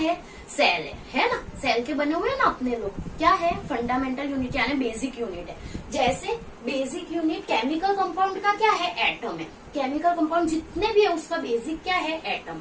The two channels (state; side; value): identical; both; correlation 1.00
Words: सेल है ना। सेल के बने हुए हैं ना अपने लोग। क्या है? फंडामेंटल यूनिट यानी बेसिक यूनिट है। जैसे बेसिक यूनिट केमिकल कंपाउंड का क्या है? एटम है। केमिकल कंपाउंड जितने भी है उसका बेसिक क्या है? एटम।